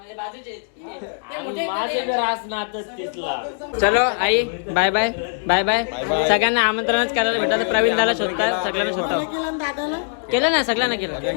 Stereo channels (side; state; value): right; silent; 65 dB below the other